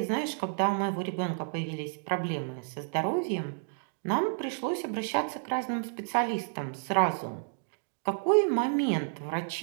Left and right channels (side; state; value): left; silent; digital silence